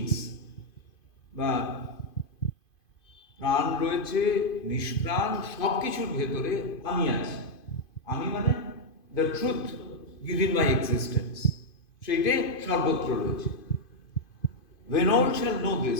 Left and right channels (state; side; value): late; right; 2.5 ms